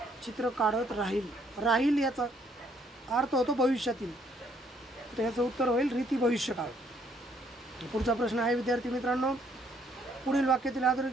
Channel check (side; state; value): both; normal; correlation 0.67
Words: चित्र काढत राहील, राहील याचा अर्थ होतो भविष्यातील, तर याचं उत्तर होईल रीती भविष्यकाळ। पुढचा प्रश्न आहे विद्यार्थी मित्रांनो, पुढील वाक्यातील